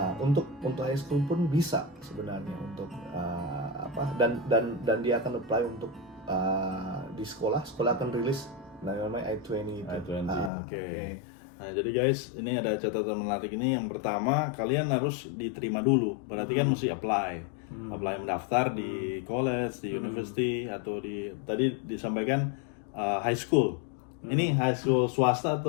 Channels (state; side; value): drops out; right; at 10.5 s